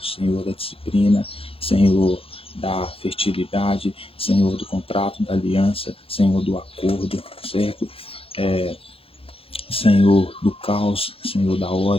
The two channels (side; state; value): right; late; 0.27 ms